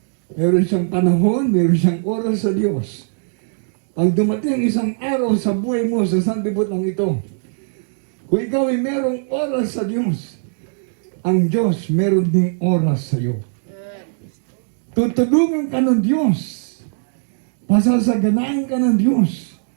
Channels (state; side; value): silent; left; digital silence